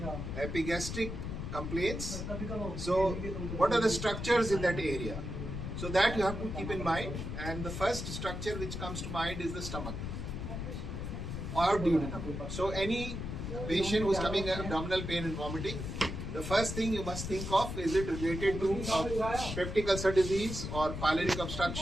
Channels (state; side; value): noise; left; rumble, 5 dB below the sound